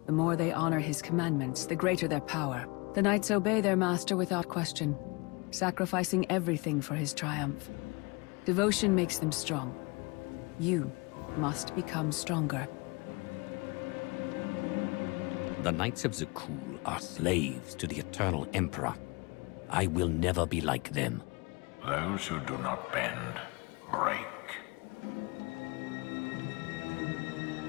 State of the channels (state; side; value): quieter; right; 27.7 dB